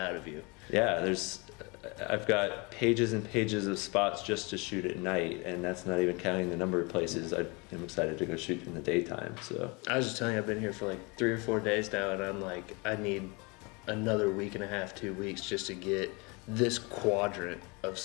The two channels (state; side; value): quieter; right; 28.6 dB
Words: of you. Yeah, I've got pages and pages of spots just to shoot at night, and that's not even counting the number of places I am excited to go shoot in the daytime. So I was just telling you, I've been here for like 3 or 4 days now, and I'm like, I need another week and a half, 2 weeks just to get this quadrant of